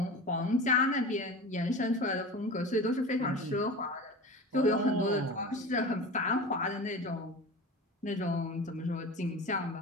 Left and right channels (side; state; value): both; normal; correlation 0.32